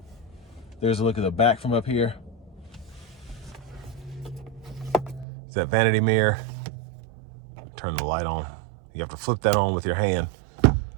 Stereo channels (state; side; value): drops out; left; at 5.2 s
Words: There's a look at the back from up here. It's that vanity mirror. Turn the light on. You have to flip that on with your hand.